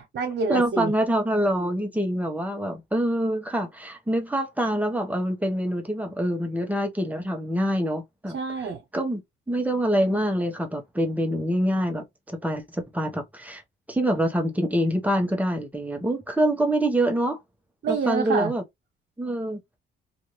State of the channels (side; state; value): both; normal; correlation 0.77